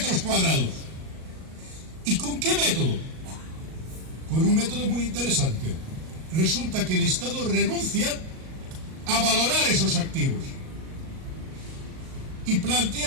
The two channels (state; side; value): late; left; 38 ms